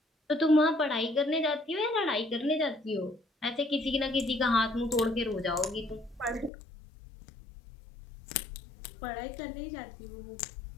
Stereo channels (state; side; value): drops out; right; at 6.5 s